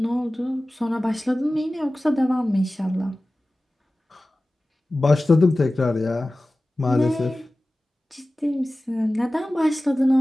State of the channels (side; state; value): both; normal; correlation 0.97